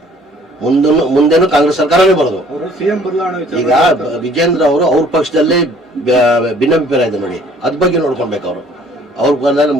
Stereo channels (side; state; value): both; normal; correlation 0.57